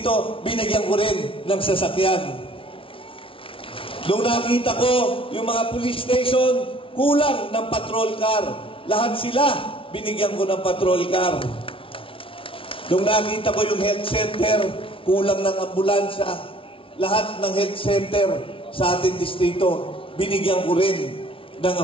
binigyan ko rin ng sasakyan. Nung nakita ko yung mga police station, kulang ng patrol car. Lahat sila, binigyan ko ng patrol car. Nung nakita ko yung health center, kulang ng ambulansya. Lahat ng health center sa ating distrito, binigyan ko rin ng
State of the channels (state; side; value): late; right; 0.25 ms